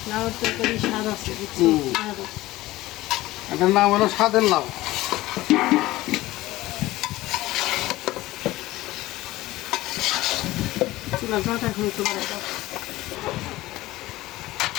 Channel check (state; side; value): quieter; right; 17.6 dB